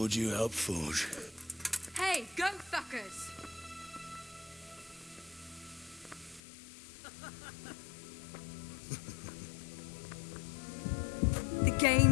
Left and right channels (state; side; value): drops out; right; at 6.4 s